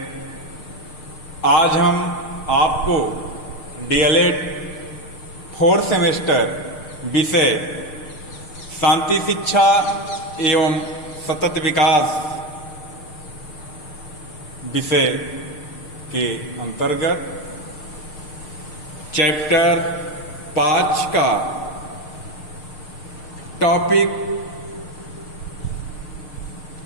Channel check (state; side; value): late; right; 6.6 ms